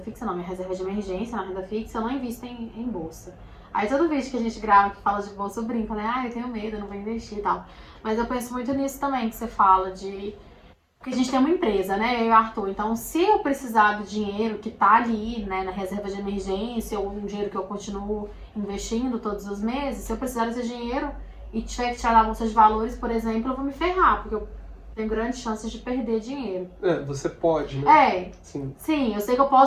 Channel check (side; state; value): both; identical; correlation 1.00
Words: fixa não, minha reserva de emergência na renda fixa, eu não invisto em bolsa. Aí todo vídeo que a gente grava que fala de bolsa, eu brinco, né, eu tenho medo, eu não vou investir e tal. Mas eu penso muito nisso também, que você fala de... Porque a gente tem uma empresa, né, eu e o Arthur, então se eu precisar do dinheiro que tá ali, né, na reserva de emergência, ou um dinheiro que eu continuo investindo todos os meses, se eu precisar desse dinheiro e tiver que tirar da bolsa de valores, por exemplo, eu vou me ferrar, porque eu tenho grandes chances de perder dinheiro. Você pode, né? Sim, eu sei que eu